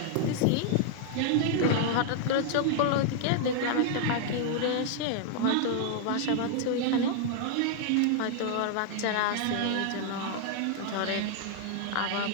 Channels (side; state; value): both; different; correlation -0.01